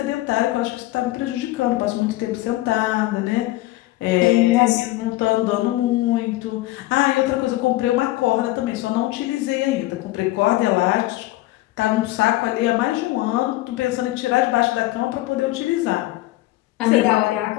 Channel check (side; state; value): right; quieter; 17.7 dB